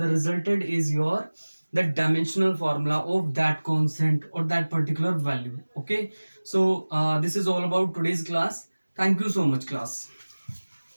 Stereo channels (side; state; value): both; inverted; correlation -1.00